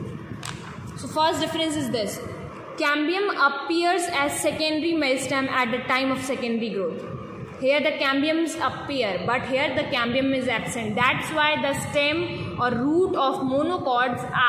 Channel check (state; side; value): identical; both; correlation 1.00